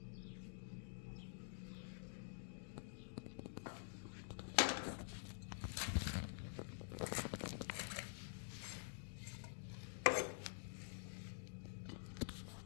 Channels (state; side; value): silent; right; digital silence